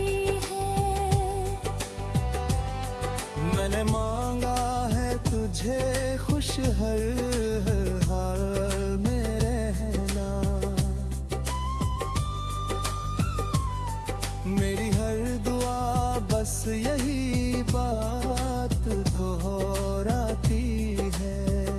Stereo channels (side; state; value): both; identical; correlation 1.00